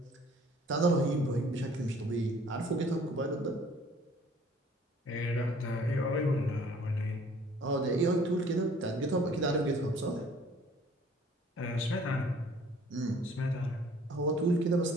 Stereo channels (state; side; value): normal; both; correlation 0.54